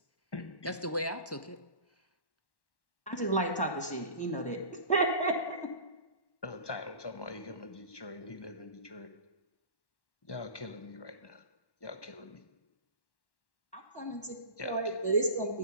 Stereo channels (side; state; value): right; late; 1.1 ms